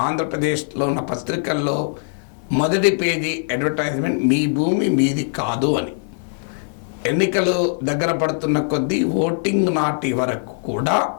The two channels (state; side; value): silent; right; 57 dB below the other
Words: ఆంధ్రప్రదేశ్లో ఉన్న పత్రికల్లో మొదటి పేజీ అడ్వర్టైజ్మెంట్ మీ భూమి మీది కాదు అని. ఎన్నికలు దగ్గర పడుతున్న కొద్దీ ఓటింగ్ నాటి వరకు కూడా